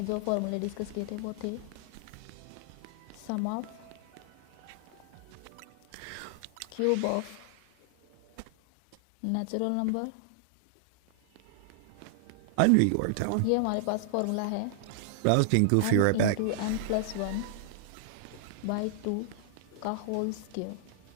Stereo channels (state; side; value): different; both; correlation -0.01